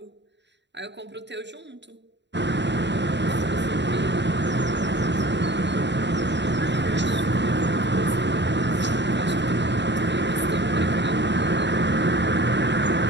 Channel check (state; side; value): late; left; 0.52 ms